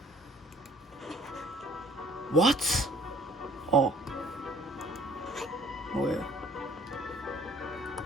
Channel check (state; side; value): normal; both; correlation 0.56